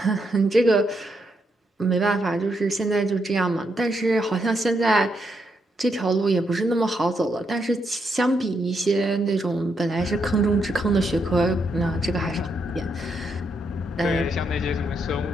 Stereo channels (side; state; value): both; normal; correlation 0.79